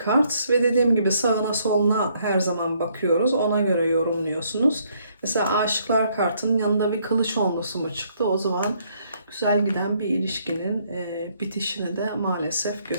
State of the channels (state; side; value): inverted; both; correlation -0.69